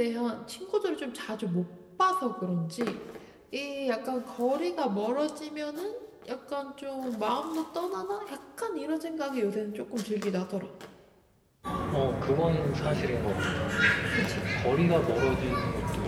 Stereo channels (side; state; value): both; identical; correlation 1.00